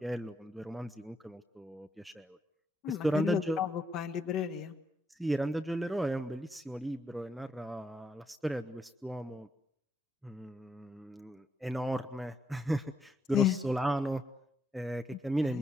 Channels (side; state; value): both; normal; correlation 0.79